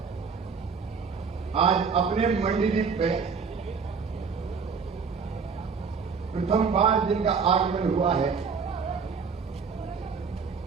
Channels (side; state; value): left; quieter; 5.6 dB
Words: आज अपने मंडीदीप पे प्रथम बार जिनका आगमन हुआ है